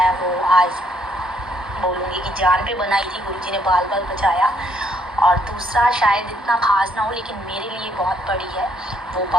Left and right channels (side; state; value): both; normal; correlation 0.70